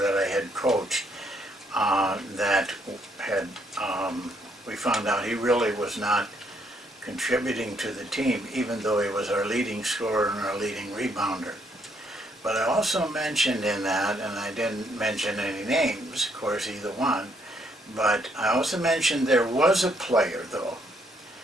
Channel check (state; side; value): normal; both; correlation 0.71